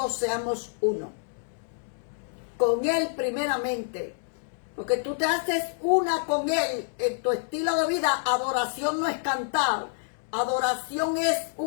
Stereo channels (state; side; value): silent; right; digital silence